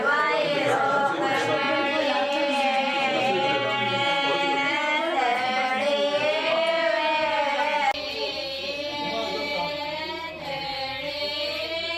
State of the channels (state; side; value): identical; both; correlation 1.00